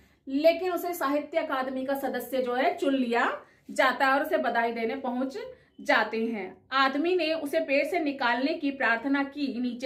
लेकिन उसे साहित्य अकादमी का सदस्य जो है चुन लिया जाता है और उसे बधाई देने पहुंच जाते हैं। आदमी ने उसे पेड़ से निकालने की प्रार्थना की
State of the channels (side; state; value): both; identical; correlation 1.00